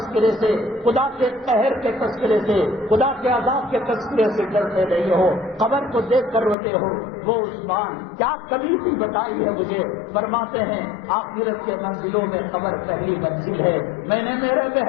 سے، خدا کے قہر کے تذکرے سے، خدا کے عذاب کے تذکرے سے ڈرتے نہیں ہو، قبر کو دیکھ کر روتے ہو؟ وہ عثمان کیا کبھی بھی بتائی ہے مجھے؟ فرماتے ہیں آخرت کے منزلوں میں قبر پہلی منزل ہے. میں نے میرے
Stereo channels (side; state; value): right; drops out; at 6.6 s